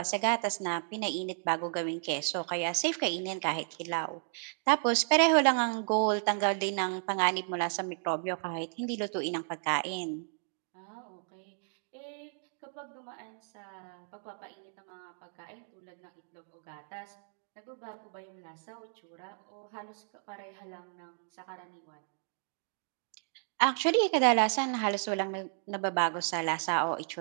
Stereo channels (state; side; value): silent; left; digital silence